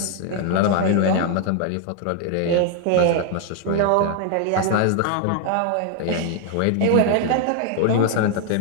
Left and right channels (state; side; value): different; both; correlation 0.00